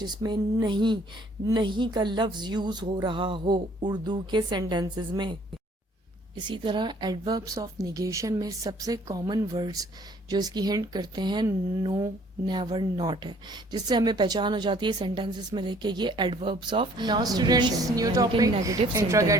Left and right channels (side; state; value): both; normal; correlation 0.58